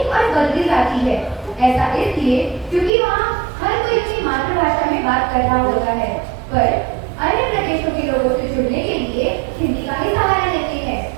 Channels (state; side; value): drops out; left; at 2.9 s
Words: और बदली जाती है। ऐसा इसलिए क्योंकि वहाँ हर कोई अपनी मातृभाषा में बात कर रहा होता है, पर अन्य प्रदेशों के लोगों से जुड़ने के लिए हिंदी का ही सहारा लेते हैं।